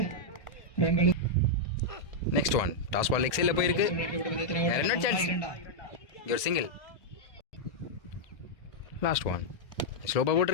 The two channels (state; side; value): late; right; 1.7 ms